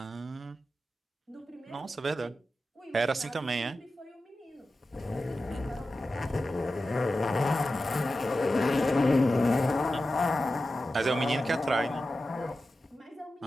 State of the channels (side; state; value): both; normal; correlation 0.93